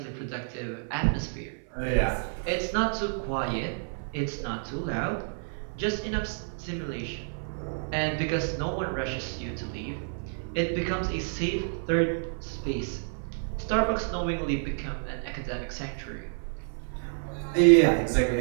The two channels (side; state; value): left; silent; 58 dB below the other